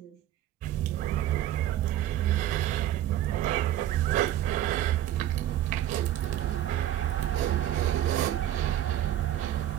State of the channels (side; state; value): left; quieter; 12.5 dB